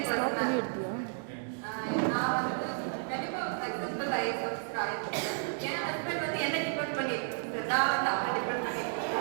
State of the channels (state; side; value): silent; left; digital silence